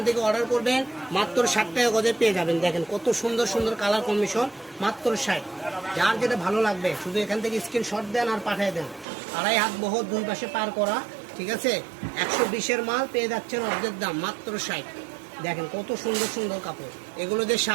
থেকে অর্ডার করবেন, মাত্র 60 টাকা গজে পেয়ে যাবেন। দেখেন কত সুন্দর সুন্দর কালার কম্বিনেশন, মাত্র 60। যার যেটা ভালো লাগবে শুধু এখান থেকে স্ক্রিনশট দেন আর পাঠিয়ে দেন। 2.5 হাত বহর, দুই পাশে পার করা, ঠিক আছে। 120-এর মাল পেয়ে যাচ্ছেন অর্ধেক দাম, মাত্র 60। দেখেন কত সুন্দর সুন্দর কাপড়, এগুলো দিয়ে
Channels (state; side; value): drops out; left; at 9.1 s